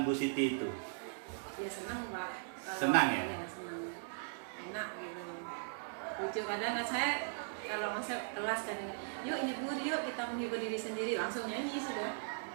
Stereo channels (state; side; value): silent; left; digital silence